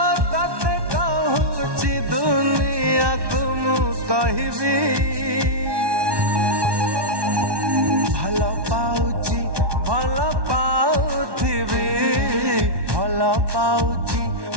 तते कहूची दुनिया को मु कहबी भल पाउची भल पाउथिबी भल पाउची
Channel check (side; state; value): left; late; 1.1 ms